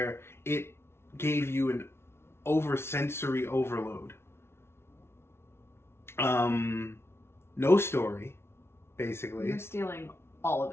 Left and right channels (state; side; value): late; right; 0.12 ms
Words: it gave you an sensory overload. No story, basically. You're stealing all of